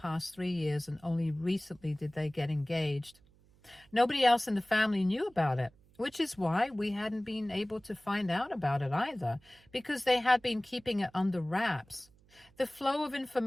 3 years, and only recently did they get engaged. Nobody else in the family knew about it, which is why we hadn't been able to find out about it either, because they had been keeping it under wraps. The flow of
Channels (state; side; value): noise; right; hum, 30 dB below the sound